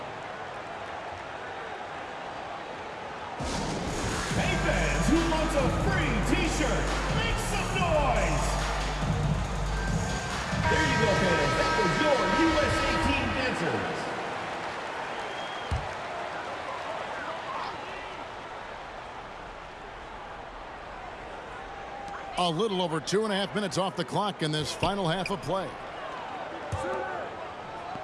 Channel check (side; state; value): both; identical; correlation 1.00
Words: fans who want a free t-shirt, make some noise! There you go, fans. That was your USA Team dancers. A little over 2.5 minutes off the clock in this final half of play.